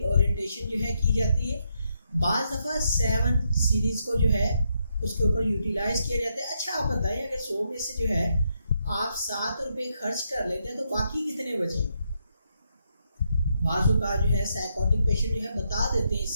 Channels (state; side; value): inverted; both; correlation -0.79